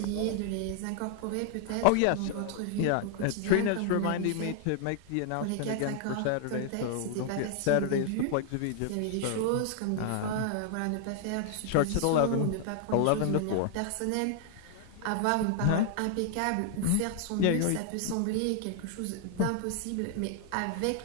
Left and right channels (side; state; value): both; different; correlation 0.00